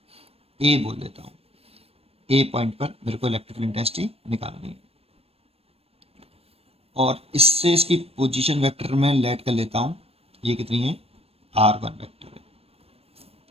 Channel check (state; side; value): late; left; 0.28 ms